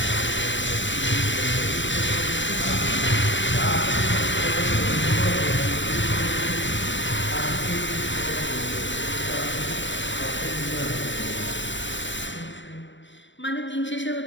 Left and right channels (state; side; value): late; right; 0.54 ms